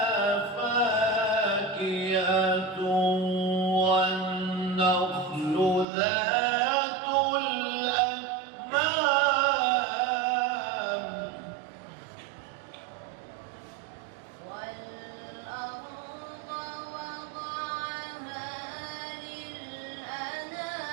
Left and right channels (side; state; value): left; drops out; at 5.9 s